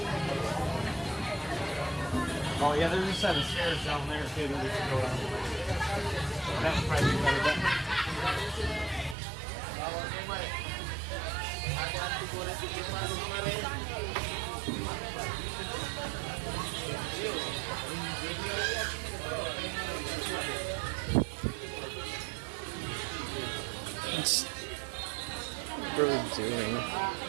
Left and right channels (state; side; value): drops out; left; at 9.2 s